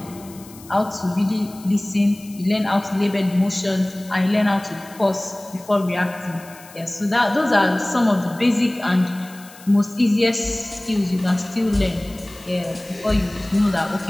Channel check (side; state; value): left; noise; hiss, 21 dB below the sound